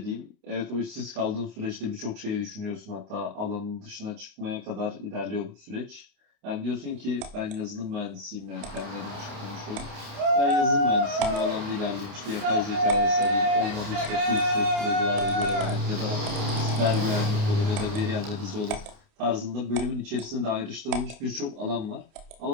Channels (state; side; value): late; left; 28 ms